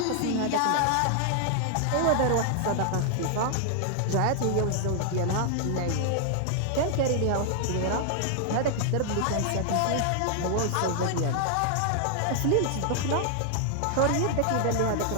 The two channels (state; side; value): different; both; correlation 0.00